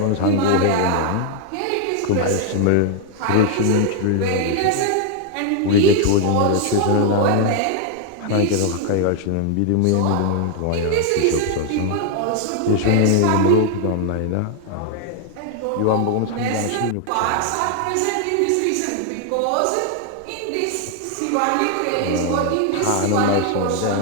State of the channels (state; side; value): different; both; correlation 0.00